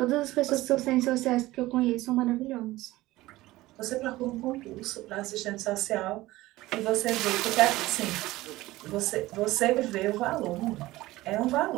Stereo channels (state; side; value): quieter; left; 18.0 dB